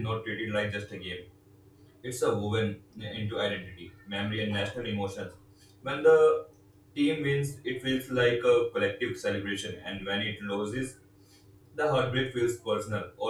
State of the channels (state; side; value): identical; both; correlation 1.00